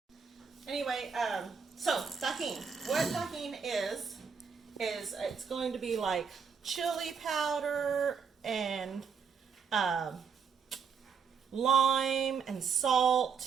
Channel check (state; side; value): quieter; left; 6.3 dB